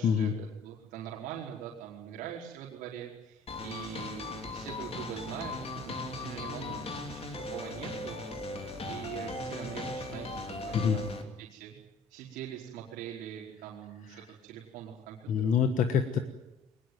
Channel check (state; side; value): quieter; right; 3.5 dB